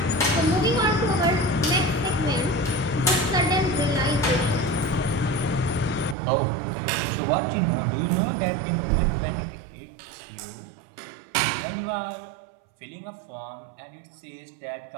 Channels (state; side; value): drops out; left; at 6.2 s